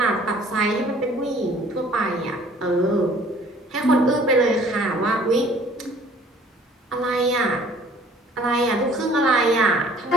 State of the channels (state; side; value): normal; both; correlation 0.54